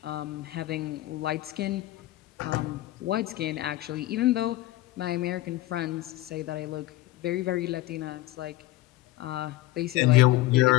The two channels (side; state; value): right; quieter; 17.0 dB